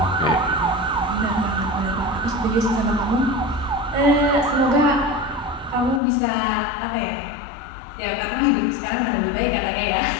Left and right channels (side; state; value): right; drops out; at 6.0 s